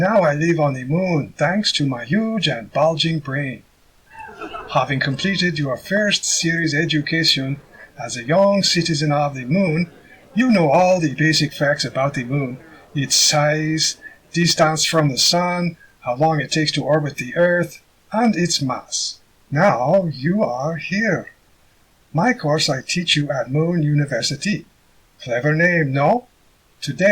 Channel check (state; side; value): identical; both; correlation 1.00